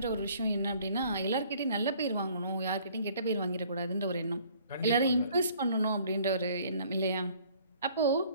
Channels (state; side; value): inverted; both; correlation -0.57